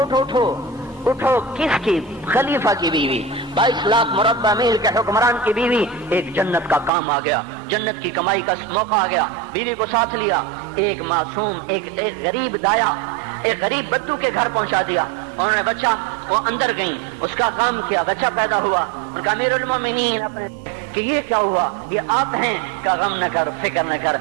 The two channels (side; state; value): left; drops out; at 6.9 s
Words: اٹھو. کس کی؟ خلیفہ کی بیوی, 22 لاکھ مربع میل کے حکمران کی بیوی. ایک جنت کا کام آ گیا, جنت کی کمائی کا موقع آ گیا. بیوی کو ساتھ لیا, ایک معصوم, ایک غریب دایا, ایک غریب بدو کے گھر پہنچا دیا. انہوں نے بچہ, وہ اندر گئی, اس کا کام کیا, بچہ پیدا ہوا. ان کا امیر المومنین کہ یہ کیا ہوا؟ یہ آپ ہیں؟ کہ غم نہ کر, فکر نہ کر,